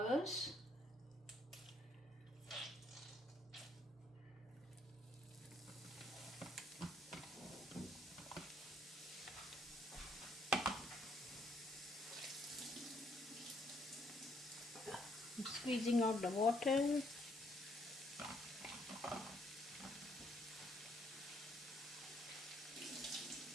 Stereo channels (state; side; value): normal; both; correlation 0.69